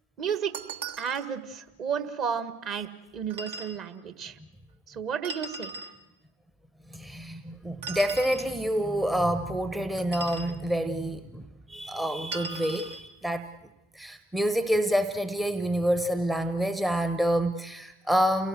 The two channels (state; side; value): normal; both; correlation 0.80